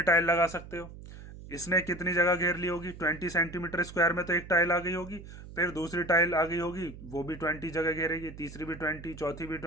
टाइल लगा सकते हो, इसने कितनी जगह घेर ली होगी, 20 सेंटीमीटर स्क्वायर में तो एक टाइल आ गई होगी, फिर दूसरी टाइल आ गई होगी वो भी 20 जगह घेरेगी, तीसरी भी 20, चौथी भी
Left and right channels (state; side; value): noise; right; hum, 14 dB below the sound